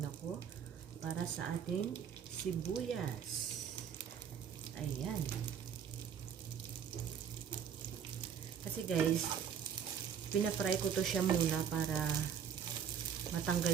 ako para sa ating sibuyas. Ayan. Kasi guys, pina-fry ko to siya muna para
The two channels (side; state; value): left; quieter; 8.0 dB